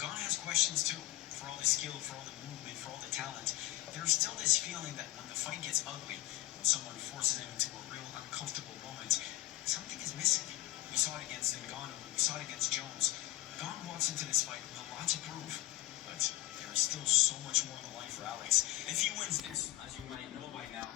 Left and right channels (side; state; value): right; quieter; 16.6 dB